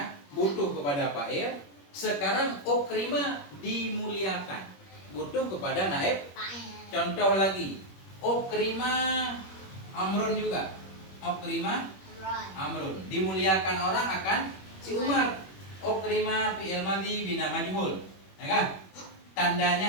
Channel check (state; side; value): late; right; 21 ms